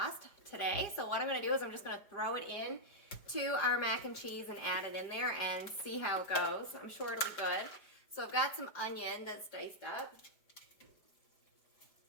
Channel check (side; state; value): right; late; 5.0 ms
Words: today. So what I'm gonna do is I'm just gonna throw it in to our mac and cheese and add it in there and see how it goes. I'm sure it'll be good. So I've got some onion that's diced up.